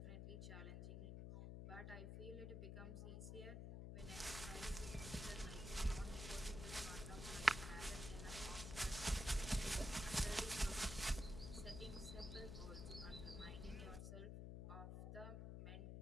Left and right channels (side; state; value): left; noise; hum, 6 dB below the sound